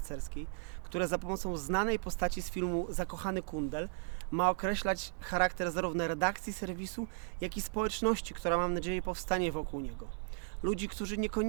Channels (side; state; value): left; silent; 54 dB below the other